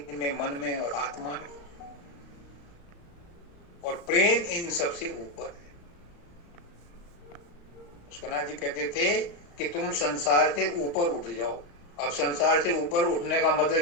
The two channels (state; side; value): late; right; 35 ms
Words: में, मन में और आत्मा में। और प्रेम इन सबसे ऊपर है। सुना जी कहते थे कि तुम संसार से ऊपर उठ जाओ। अब संसार से ऊपर उठने का